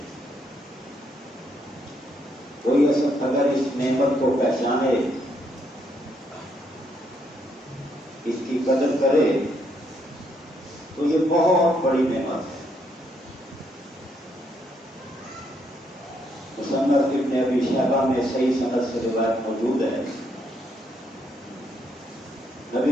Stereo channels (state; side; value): normal; both; correlation 0.74